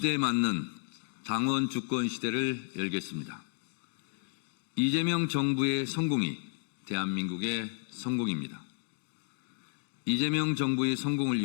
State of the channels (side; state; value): right; silent; digital silence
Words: 맞는 당원 주권 시대를 열겠습니다. 이재명 정부의 성공이 대한민국의 성공입니다. 이재명 정부의 성공을